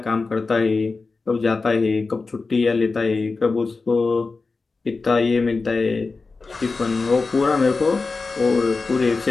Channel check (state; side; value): quieter; right; 4.1 dB